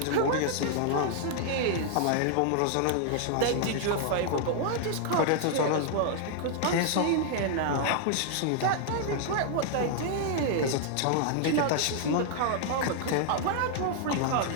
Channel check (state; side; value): different; both; correlation 0.00